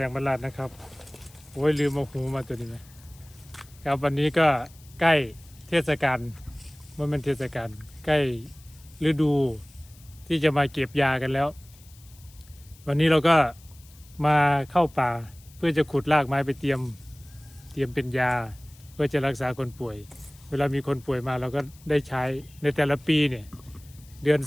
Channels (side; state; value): left; noise; hiss, 25 dB below the sound